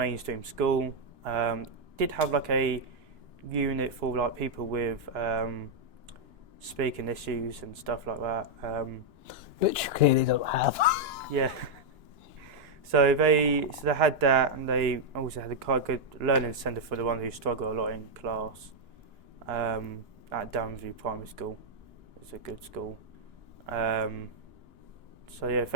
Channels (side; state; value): left; late; 2.9 ms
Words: school. Did have like a unit for like people with speaking issues and stuff like that. Which you clearly don't have. Yeah. So they had that, and they also had a quite good learning centre for the ones who struggle a lot in class. At Downview Primary School, it's a good school. So yeah,